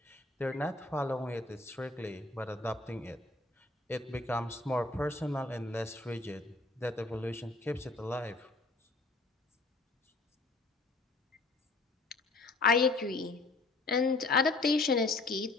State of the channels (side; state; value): right; quieter; 3.3 dB